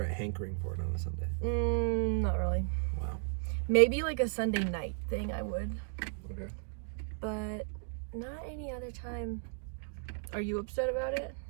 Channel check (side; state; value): left; silent; 55 dB below the other